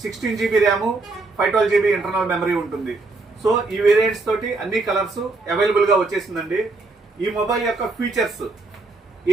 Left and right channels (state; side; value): quieter; left; 3.5 dB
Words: 16GB RAM 512GB internal memory ఉంటుంది. సో ఈ వేరియంట్స్ తోటి అన్ని కలర్స్ అవైలబుల్గా వచ్చేసిందండి. ఈ మొబైల్ యొక్క ఫీచర్స్